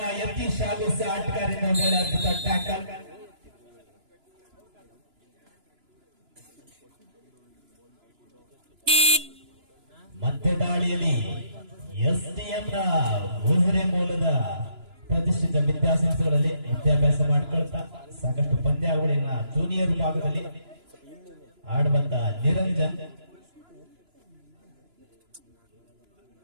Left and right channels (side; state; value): left; late; 2.9 ms